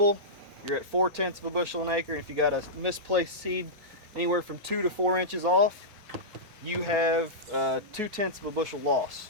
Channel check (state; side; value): normal; both; correlation -0.14